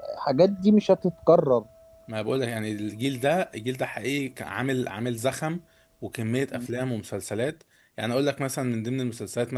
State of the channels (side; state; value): both; identical; correlation 1.00